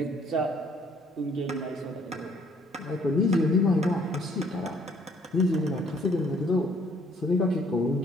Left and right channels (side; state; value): both; normal; correlation 0.62